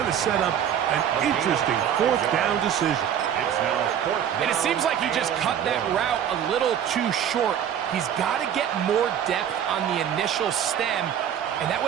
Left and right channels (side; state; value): left; quieter; 9.4 dB